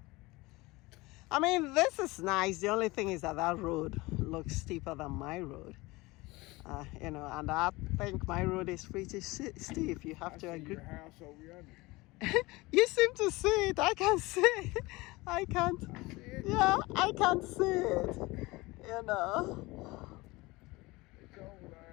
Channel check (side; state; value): right; quieter; 22.0 dB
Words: I mean, this is nice. The only thing is that that road looks steeper than my road. You know, and I think my road is pretty steep. You have I to see agree. your house over yonder. You seem to see it. I can see it. I can't. I see it. Yeah, I can't see it. You know. It's over